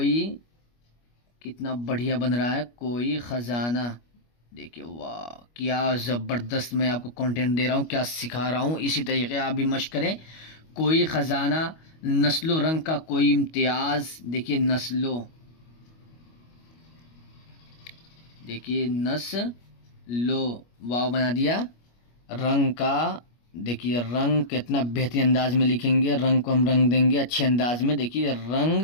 कितना बढ़िया बन रहा है। कोई ख़जाना, देखिए वाह क्या ज़बरदस्त मैं आपको कंटेंट दे रहा हूँ, क्या सिखा रहा हूँ। इसी तरीके आप भी मश्क करें। कोई ख़जाना, नस्लो रंग का कोई इम्तियाज़, देखिए नस्लो, देखिए नस्लो वाव बना दिया। रंग का, देखिए रंग कितना बेहतरीन अंदाज में लिखेंगे। रंग को हम रंग देंगे अच्छे अंदाज में। देखिए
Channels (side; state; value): right; late; 25 ms